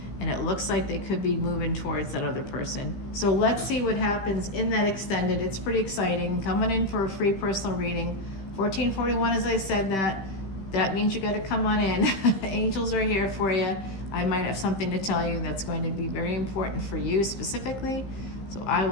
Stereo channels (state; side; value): late; right; 15 ms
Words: and it looks like they could be moving towards that other person. So let's see what happens in that extended. It's pretty exciting. Coming in for a free personal reading. 1441, as I said, that means you got to come on in. Angels are here for you. I might have something to tell you that's going to be very important for you specifically. So I